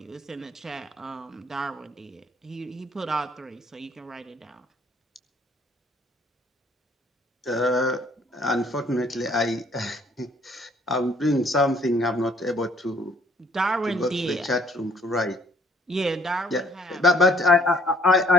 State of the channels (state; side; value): normal; both; correlation 0.62